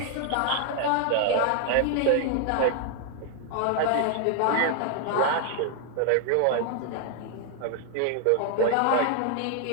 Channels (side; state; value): both; different; correlation 0.00